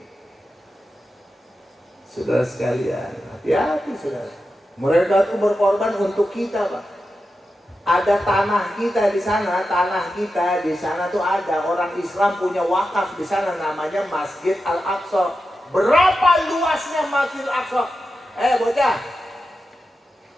Saudara sekalian, hati-hati saudara. Mereka itu berkorban untuk kita, Pak. Ada tanah kita di sana, tuh ada orang Islam punya wakaf di sana, namanya Masjid Al-Aqsa. Berapa luasnya Masjid Al-Aqsa? Bocah,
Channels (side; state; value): both; normal; correlation 0.90